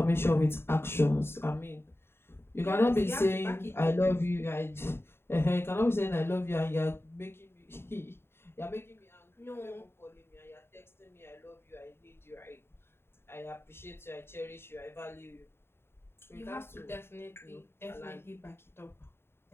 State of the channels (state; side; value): late; right; 0.11 ms